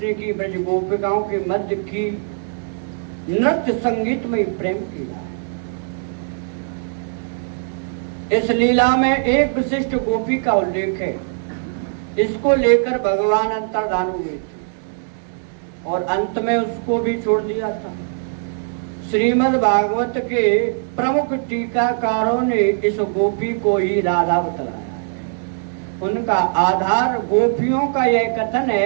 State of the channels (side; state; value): left; silent; digital silence